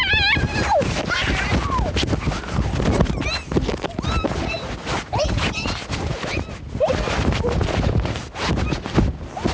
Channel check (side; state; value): both; identical; correlation 1.00